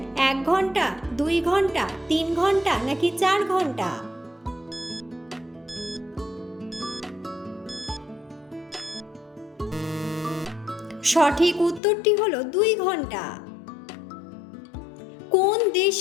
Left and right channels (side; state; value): right; drops out; at 11.8 s